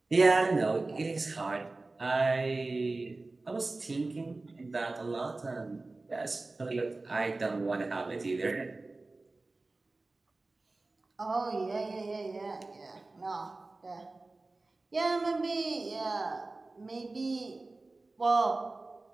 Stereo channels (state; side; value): quieter; left; 3.3 dB